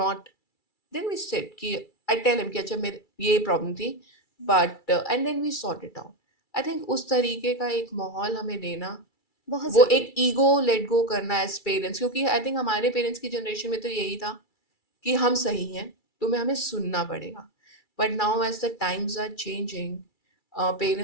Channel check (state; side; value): late; right; 2.3 ms